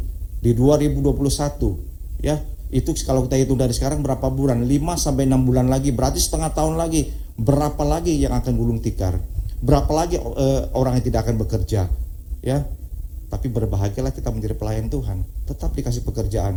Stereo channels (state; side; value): identical; both; correlation 1.00